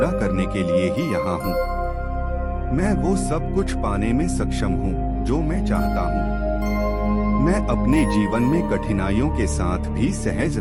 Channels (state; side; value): identical; both; correlation 1.00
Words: करने के लिए ही यहाँ हूँ। मैं वो सब कुछ पाने में सक्षम हूँ जो मैं चाहता हूँ। मैं अपने जीवन में कठिनाइयों के साथ भी सहज